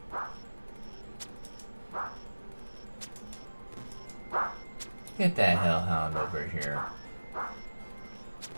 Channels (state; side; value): inverted; both; correlation -1.00